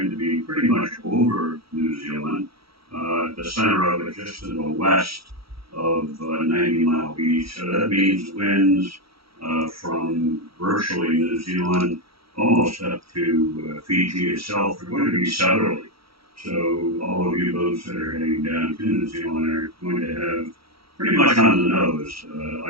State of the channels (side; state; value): left; late; 0.75 ms